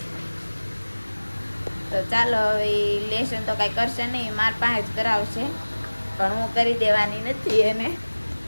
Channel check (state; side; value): inverted; both; correlation -1.00